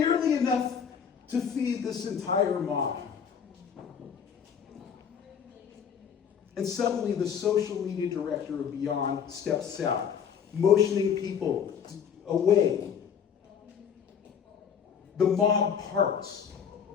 enough to feed this entire mob. And suddenly the social media director of Beyond steps out, motioning people away. The mob parts,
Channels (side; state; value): right; quieter; 7.4 dB